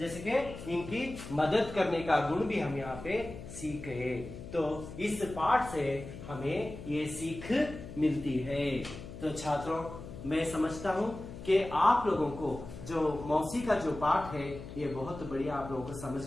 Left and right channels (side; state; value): left; noise; hum, 12 dB below the sound